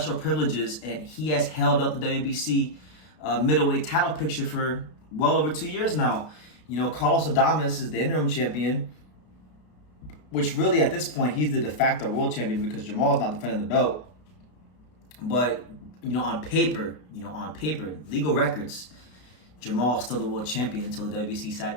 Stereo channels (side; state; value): right; late; 33 ms